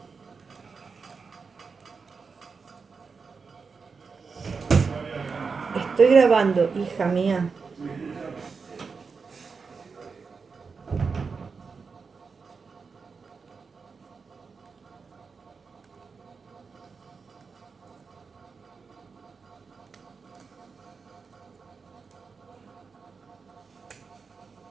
estoy grabando, hija mía.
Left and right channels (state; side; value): quieter; left; 5.0 dB